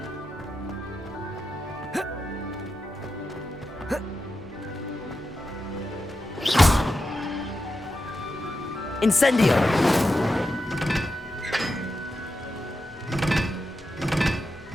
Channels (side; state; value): both; normal; correlation 0.89